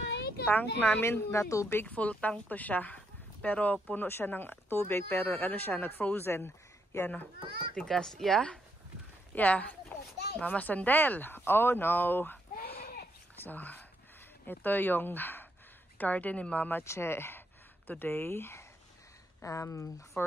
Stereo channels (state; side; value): normal; both; correlation 0.78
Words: tank namin na tubig, full tank to siya. Pero puno siya ng tubig, pero ano siya, nag-frozen. Yan o, tigas. Yeah? Yeah. Mama Sandel. Oh no. So, ito yung garden ni Mama Che today.